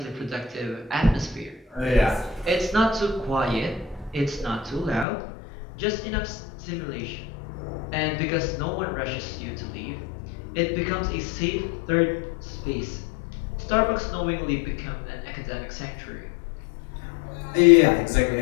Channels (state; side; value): drops out; right; at 5.1 s